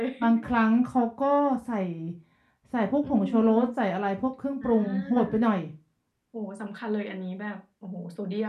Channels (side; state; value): both; identical; correlation 1.00